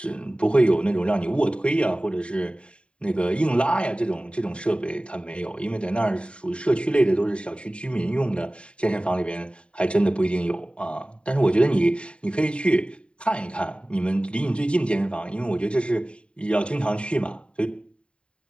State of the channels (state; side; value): late; right; 0.056 ms